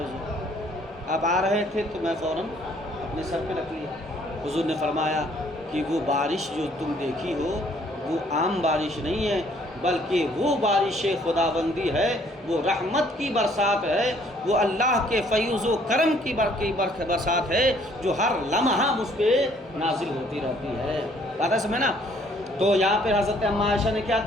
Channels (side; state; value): both; normal; correlation 0.62